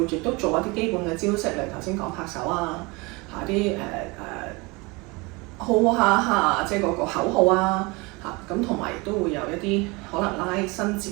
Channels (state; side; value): quieter; left; 25.9 dB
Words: 亦都做一啲基本嘅招式，例如頭先講拍手啊，啲號下即係嗰個口號啊，咁同埋亦都會有一啲可能伸